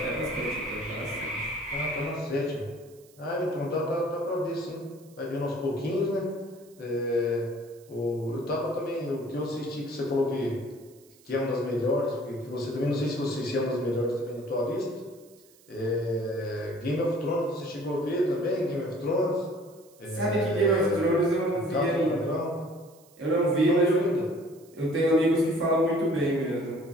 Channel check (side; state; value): right; noise; hiss, 28 dB below the sound